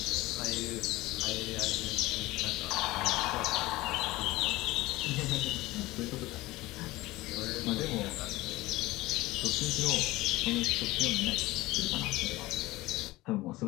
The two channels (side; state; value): right; quieter; 19.1 dB